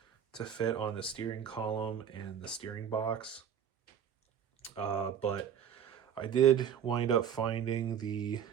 to fit on the steering column and the steering box. But I did wind up finding the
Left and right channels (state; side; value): quieter; left; 8.5 dB